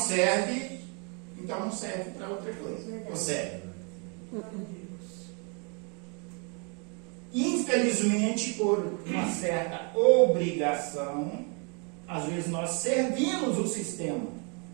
então não serve para outra coisa. Ou serve. Infelizmente, por uma certa obrigação, às vezes nós servimos o sistema.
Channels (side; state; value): left; quieter; 35.4 dB